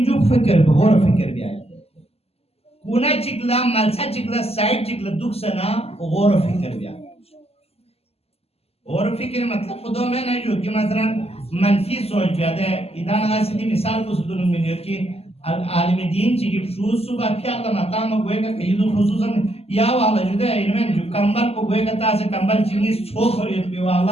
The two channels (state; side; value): late; right; 0.29 ms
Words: فکر بھی غور فکر بھی آئے کونا چکلا ملسا چکلا سائٹ چکلا دکھ سنا غور فکر بھی آئے غور فکر مطلب خودو میں نہیں جو کہ مثلا منفی سوچ بھی آدھے ادھانا گا سیدھی مثال کو سدھنوں میں نیت کی عالم دین چکی شروع صبح پھر اللہ مقام گوئے گا کہ خصوصا یا والا جو دے انہیں جو کمبل کو گوئے گا تاسے کمبل چنگی چھوک ہو رہی ہے